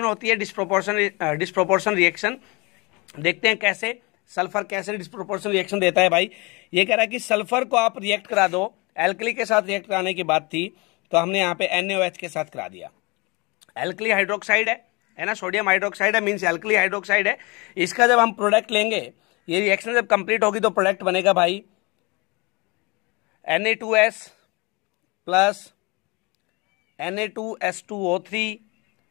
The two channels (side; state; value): right; quieter; 26.8 dB